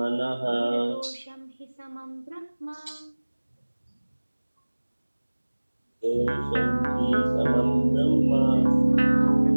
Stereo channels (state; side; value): inverted; both; correlation -1.00